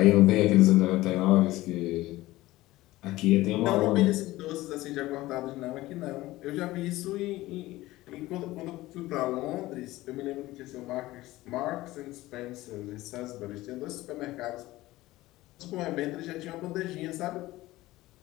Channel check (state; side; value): quieter; right; 17.8 dB